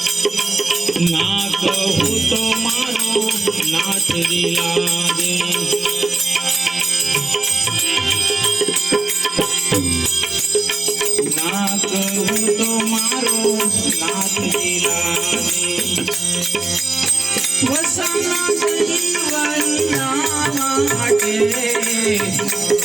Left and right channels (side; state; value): left; quieter; 3.2 dB